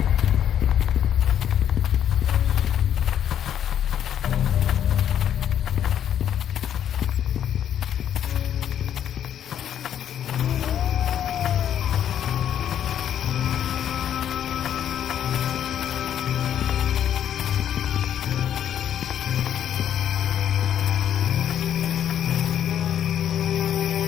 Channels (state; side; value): quieter; right; 9.8 dB